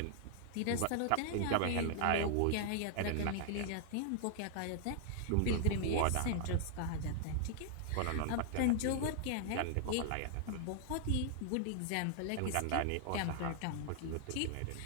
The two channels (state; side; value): different; both; correlation 0.00